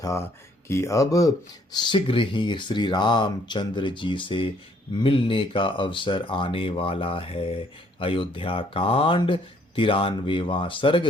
कि अब शीघ्र ही श्री रामचंद्र जी से मिलने का अवसर आने वाला है। अयोध्या कांड 93वां सर्ग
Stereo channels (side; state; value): both; normal; correlation 0.65